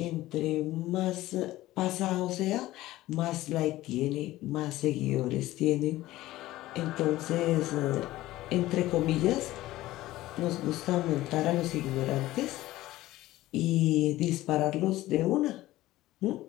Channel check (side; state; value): right; quieter; 16.5 dB